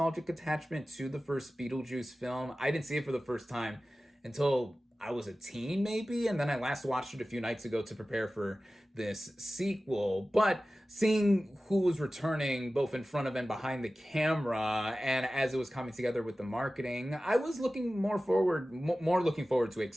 attachment to the first Beetlejuice film. I didn't see it for the first time until I was a teen, maybe, and then I last watched it a few nights ago to prepare for this sequel. But seeing who was returning both in front of and behind the camera, and as it was coming together with the marketing, I was more looking forward to it,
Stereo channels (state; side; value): normal; both; correlation 0.96